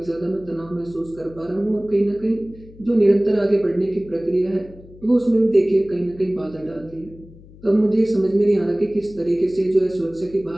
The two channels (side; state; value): left; noise; hum, 21 dB below the sound